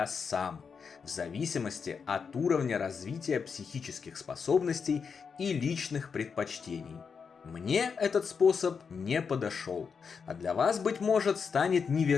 сам, в зависимости от уровня развития психических способностей и личных предпочтений. Мне этот способ не подошел, а для вас, быть может, станет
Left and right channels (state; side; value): quieter; right; 5.9 dB